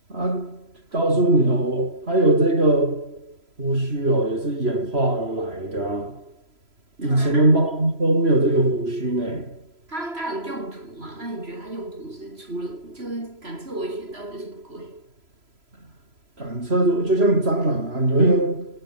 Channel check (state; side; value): late; left; 3.0 ms